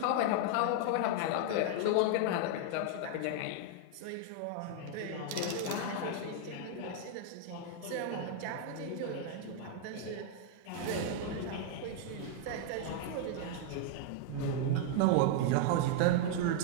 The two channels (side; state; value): both; different; correlation 0.00